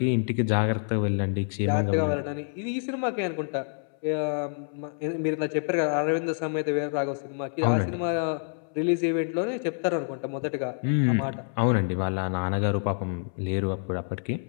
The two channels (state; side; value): silent; right; 60 dB below the other